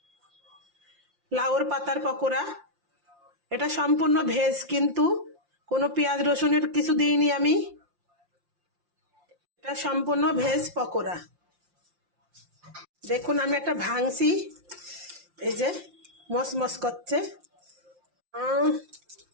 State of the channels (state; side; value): late; left; 5.7 ms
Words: লাউর পাতার পকোড়া। এটা সম্পূর্ণ ভেজ, কিন্তু কোনো পেঁয়াজ রসুনের কিছু দিইনি আমি। এটা সম্পূর্ণ ভেজ পকোড়া। দেখুন আমি একটা ভাঙছি, এই যে মসমস করছে।